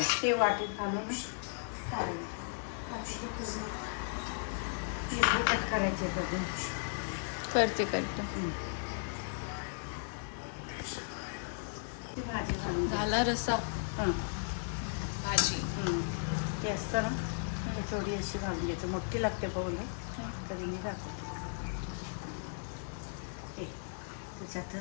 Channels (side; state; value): right; silent; digital silence